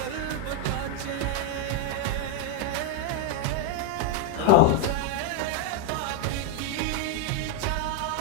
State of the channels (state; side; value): different; both; correlation 0.01